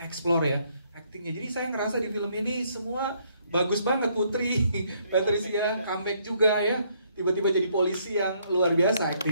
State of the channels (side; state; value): both; inverted; correlation -0.69